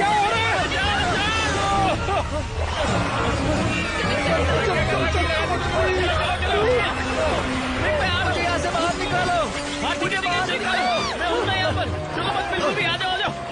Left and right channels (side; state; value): both; identical; correlation 1.00